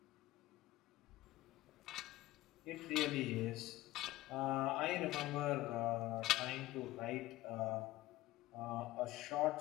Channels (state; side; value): quieter; right; 16.9 dB